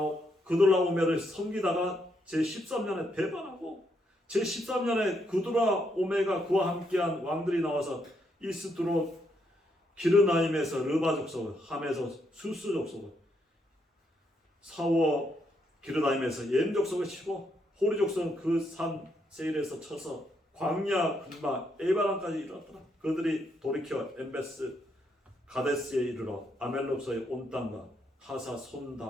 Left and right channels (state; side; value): normal; both; correlation 0.77